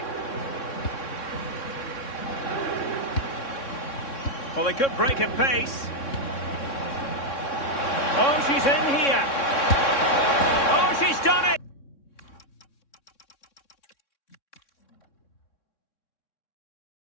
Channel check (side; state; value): right; late; 3.6 ms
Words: Well, they could break at pace. Oh, she's in here. Oh, she's done it.